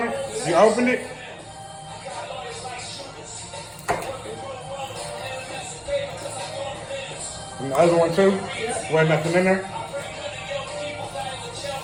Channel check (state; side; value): identical; both; correlation 1.00